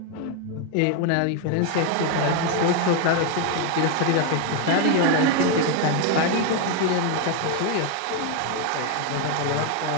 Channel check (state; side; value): different; both; correlation 0.01